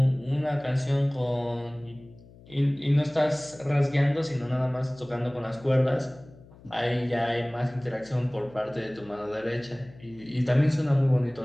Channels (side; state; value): left; noise; hum, 23 dB below the sound